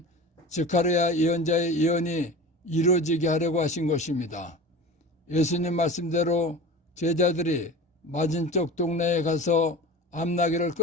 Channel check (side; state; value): both; normal; correlation 0.34